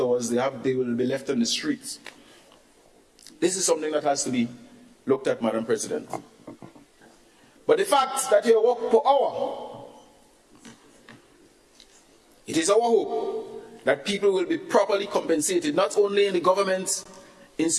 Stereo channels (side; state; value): both; identical; correlation 1.00